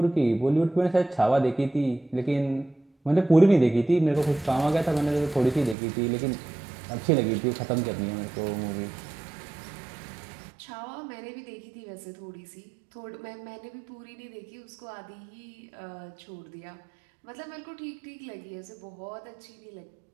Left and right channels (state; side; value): drops out; left; at 5.8 s